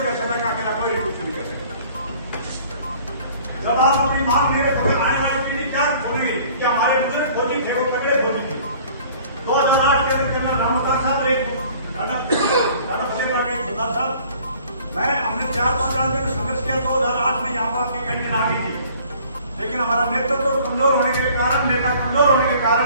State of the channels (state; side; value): inverted; both; correlation -0.52